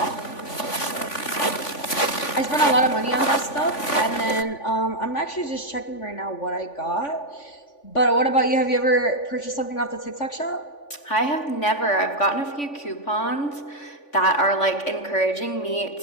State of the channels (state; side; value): late; right; 3.5 ms